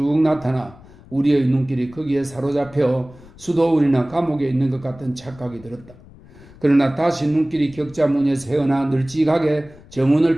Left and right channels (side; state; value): left; noise; rumble, 22 dB below the sound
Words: 나타나 우리의 눈길이 거기에 사로잡혀 수도원이나 감옥에 있는 것 같은 착각이 들었다. 그러나 다시 눈길이 격자무늬에서 헤어나 널찍하게 정원을